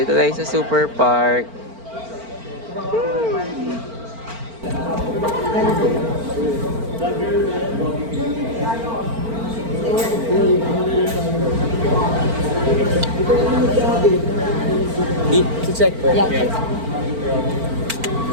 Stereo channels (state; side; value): late; left; 4.4 ms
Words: tayo sa Super Park. Check ko. Yeah.